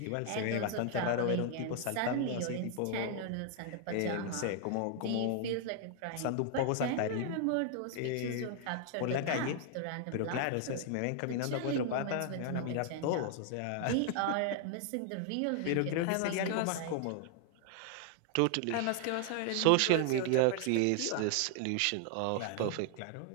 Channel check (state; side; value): different; both; correlation 0.00